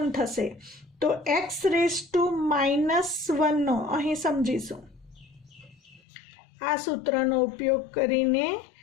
થશે, તો x⁻−1 નો અહીં સમજીશું. આ સૂત્રનો ઉપયોગ કરીને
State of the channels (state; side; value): drops out; right; at 6.0 s